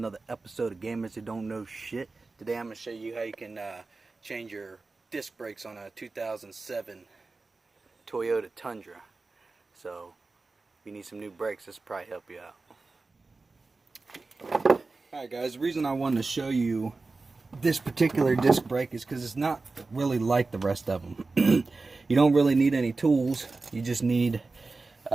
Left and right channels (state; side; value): quieter; left; 3.7 dB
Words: episode of Gamers Who Don't Know Shit. Today I'm going to show you how you can change your disc brakes on a 2007 Toyota Tundra. So if you need some new brakes, this will probably help you out. Alright guys, the reason I wanted to show you this particular disc brake is because it's not really like the rest of them. You don't really need any tools. You just need